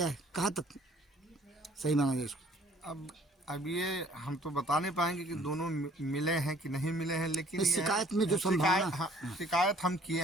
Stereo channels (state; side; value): normal; both; correlation 0.57